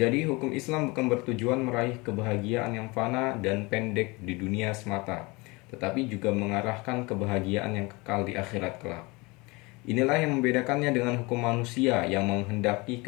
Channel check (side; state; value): right; quieter; 25.1 dB